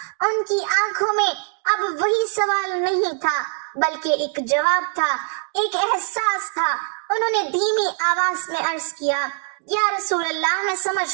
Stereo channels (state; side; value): silent; left; 58 dB below the other